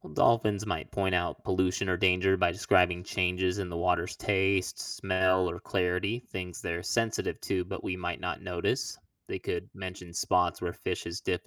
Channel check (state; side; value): identical; both; correlation 1.00